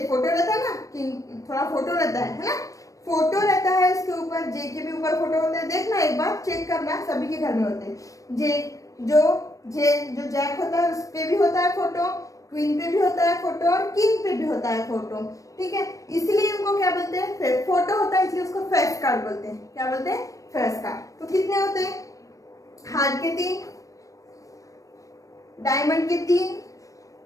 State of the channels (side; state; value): right; late; 0.16 ms